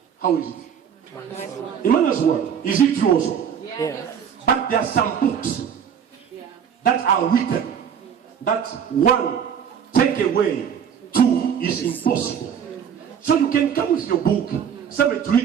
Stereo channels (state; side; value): quieter; left; 8.0 dB